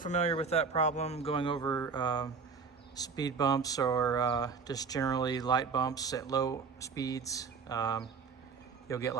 with that problem going over speed bumps or just generally light bumps at low speeds. You'll get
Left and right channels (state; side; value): quieter; left; 5.3 dB